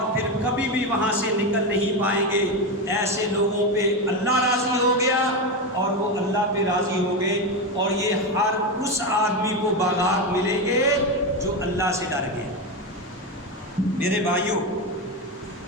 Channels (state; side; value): normal; both; correlation 0.14